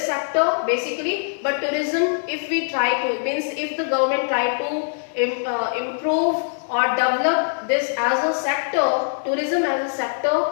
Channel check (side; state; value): right; silent; digital silence